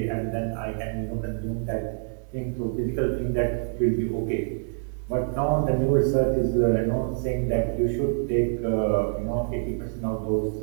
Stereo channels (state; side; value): silent; left; digital silence